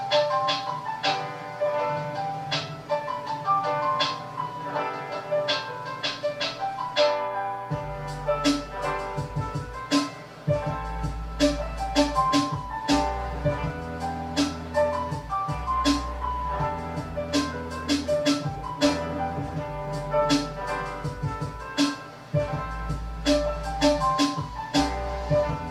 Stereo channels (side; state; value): both; identical; correlation 1.00